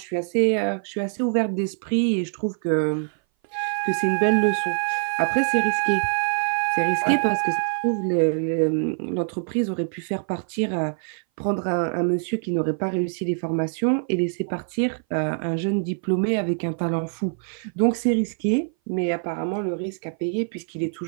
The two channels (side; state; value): left; silent; 59 dB below the other